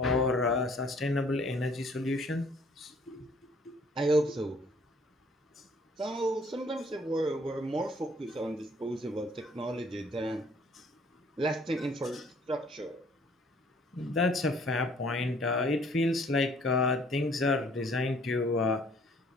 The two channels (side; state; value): both; normal; correlation 0.58